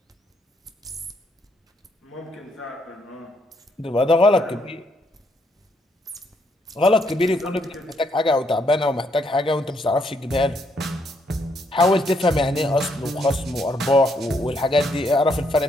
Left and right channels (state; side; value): normal; both; correlation 0.73